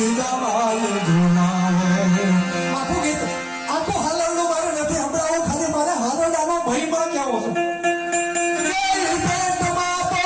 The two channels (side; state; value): both; identical; correlation 1.00